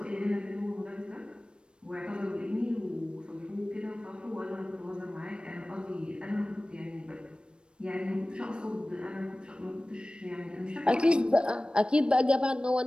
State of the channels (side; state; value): left; late; 0.055 ms